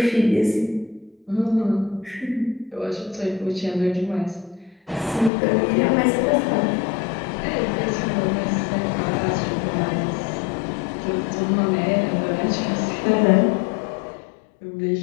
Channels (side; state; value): right; drops out; at 5.3 s